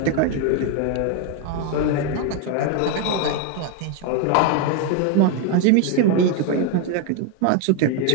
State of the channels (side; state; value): both; different; correlation 0.01